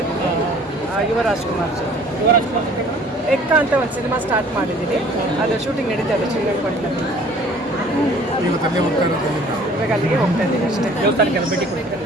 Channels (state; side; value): normal; both; correlation 0.53